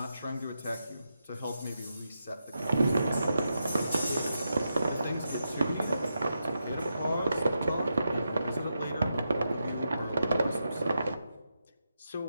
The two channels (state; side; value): inverted; both; correlation -0.86